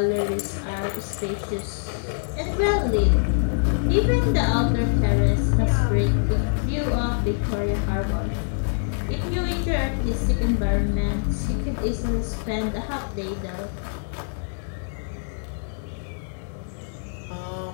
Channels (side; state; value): right; silent; digital silence